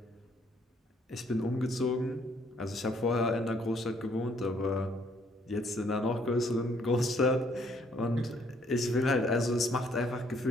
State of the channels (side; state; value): both; normal; correlation 0.66